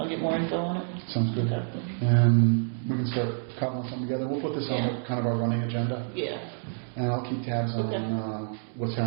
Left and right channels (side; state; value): left; silent; digital silence